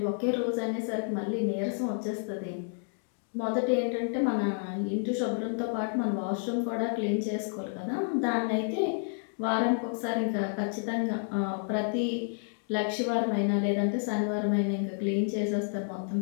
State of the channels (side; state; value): right; silent; digital silence